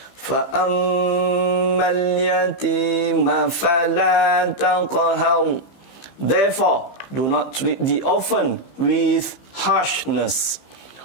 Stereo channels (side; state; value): right; late; 15 ms